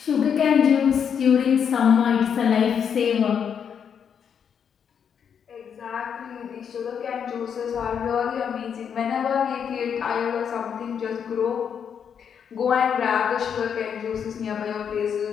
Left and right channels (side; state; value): right; quieter; 7.6 dB